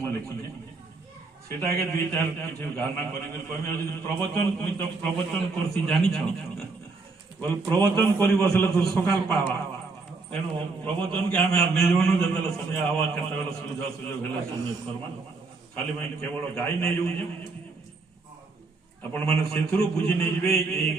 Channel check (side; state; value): left; quieter; 3.9 dB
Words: लिखी सेटाके दुई चार किसी गाना कर प्रवचन तुम तो प्रवचन करसी जानी बोल प्रवचन कर बसले तो सकाल पावा तेणु प्रवचन के आम निजमन जो समय आवा केत सुविधा सुजोग है सुनिए करमा खाली मैं केवल गाई नहीं जाऊँ आपण मैंने से बुझी नहीं